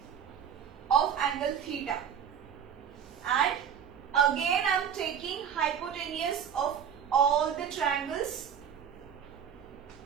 of angle theta. And again I am taking hypotenuse of all the triangles.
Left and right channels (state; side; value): quieter; left; 8.2 dB